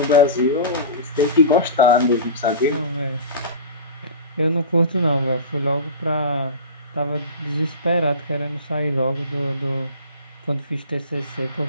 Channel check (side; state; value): both; inverted; correlation -0.32